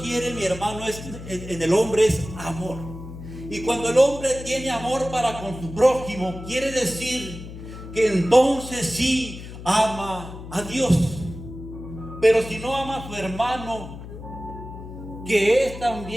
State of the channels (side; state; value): left; noise; hum, 12 dB below the sound